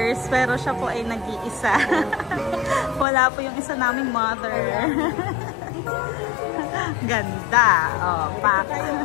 pero siya po ay nag-iisa. Wala po yung isa naming mother. Ganda. Oh, pak.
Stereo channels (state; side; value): drops out; right; at 3.1 s